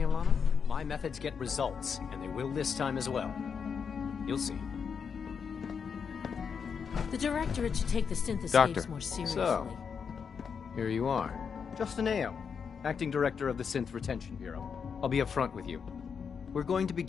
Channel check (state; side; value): quieter; right; 6.4 dB